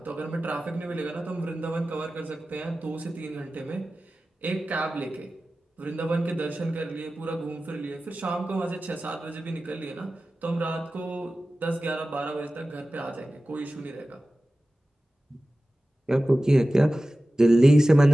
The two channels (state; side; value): normal; both; correlation 0.96